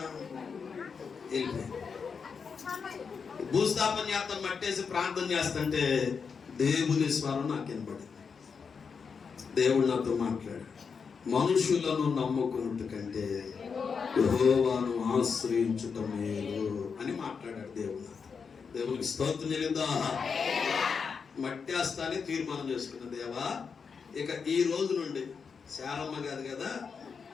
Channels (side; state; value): right; quieter; 5.8 dB